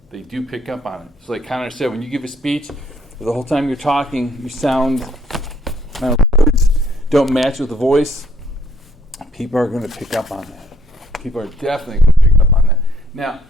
they do pick up on it. So like Connor said, when you give a speech, the whole time you're talking, you sound, words don't match with the voice, people are going to pick up on that. People are definitely going to pick up on that. Now,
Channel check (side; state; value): both; normal; correlation 0.65